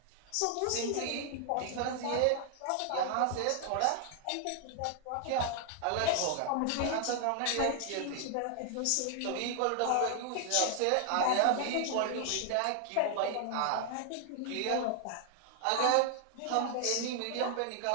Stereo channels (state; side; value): different; both; correlation 0.00